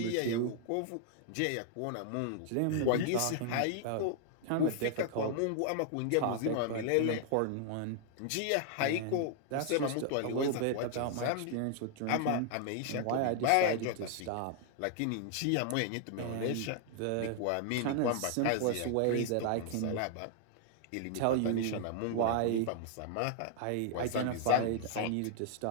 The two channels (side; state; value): both; different; correlation 0.00